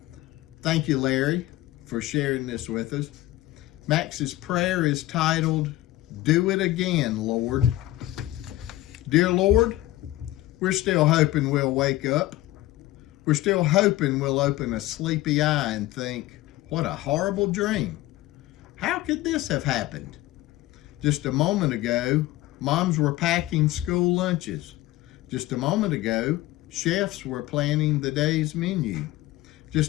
Thank you, Larry, for sharing this with us. Max's prayer is titled, "Do It Again, Lord." Dear Lord, we're still hoping we'll wake up. We're still hoping we'll open a sleepy eye and think, what a horrible dream. How could this have happened? Just a moment ago, moms were packing school lunches. Just a moment ago, chefs were planning the day's menu.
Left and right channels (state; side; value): quieter; right; 16.5 dB